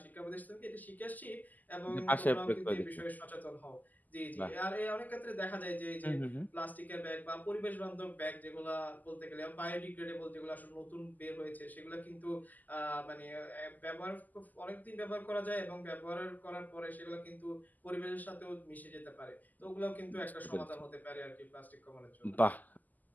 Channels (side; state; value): right; late; 0.082 ms